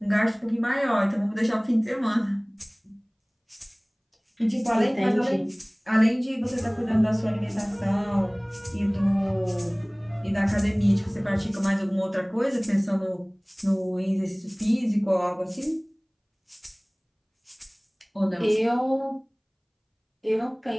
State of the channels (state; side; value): identical; both; correlation 1.00